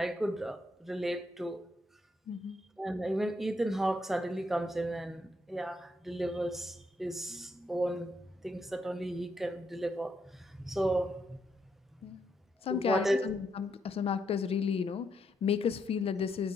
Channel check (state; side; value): normal; both; correlation 0.78